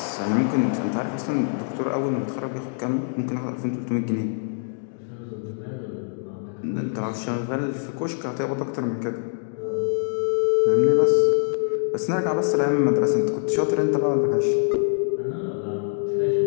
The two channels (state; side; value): silent; right; digital silence